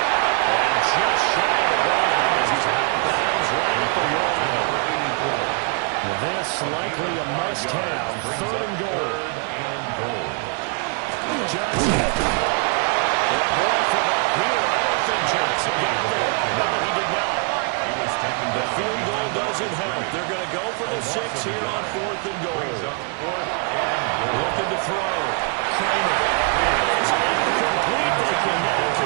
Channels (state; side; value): quieter; left; 36.6 dB